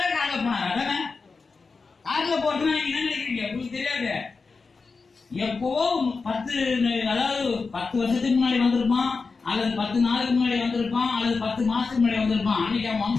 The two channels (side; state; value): right; quieter; 4.5 dB